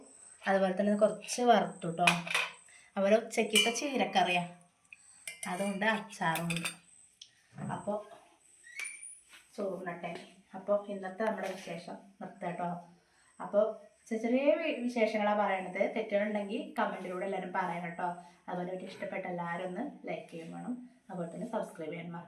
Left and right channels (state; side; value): identical; both; correlation 1.00